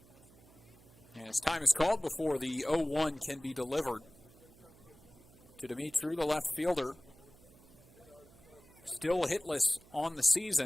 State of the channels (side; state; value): right; noise; hum, 25 dB below the sound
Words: As time is called before the 0-1 can be delivered to Dimitru, the left fielder. Still hitless on the